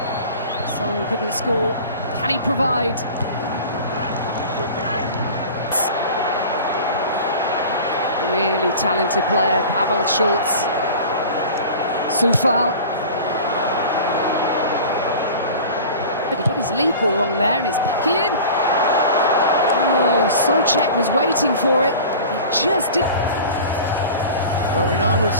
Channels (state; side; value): inverted; both; correlation -0.38